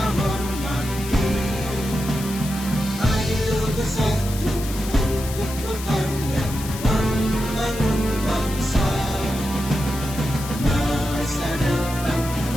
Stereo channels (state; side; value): noise; left; hiss, 11 dB below the sound